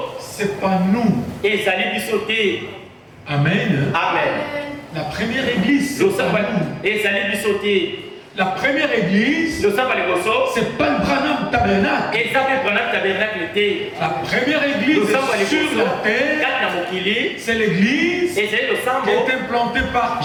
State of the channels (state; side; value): identical; both; correlation 1.00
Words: c'est pas nous. Amen. Amen. La première église, c'est pas nous. La première église, c'est pas le Branham Tabernacle. La première église sur la terre, c'est l'église qui est implantée par